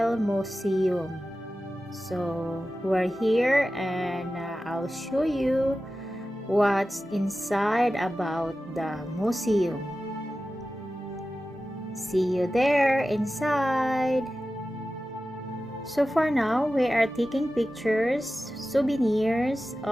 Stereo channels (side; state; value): both; normal; correlation 0.94